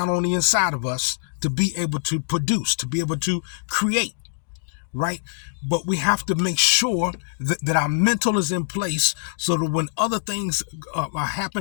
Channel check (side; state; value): right; silent; digital silence